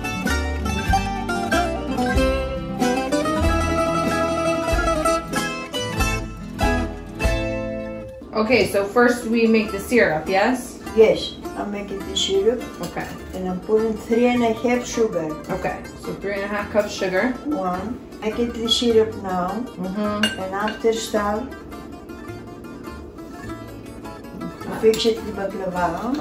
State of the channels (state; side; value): identical; both; correlation 1.00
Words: Okay, so first we make the syrup, yes? Yes, I'm making the syrup. Okay. And I'm putting 3.5 sugar. Okay, so 3.5 cups sugar. One. Making the syrup now. And after start, fix it the baklava.